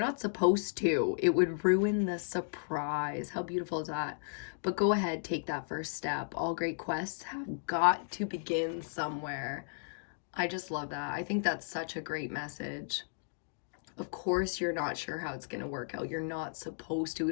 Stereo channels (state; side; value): silent; right; digital silence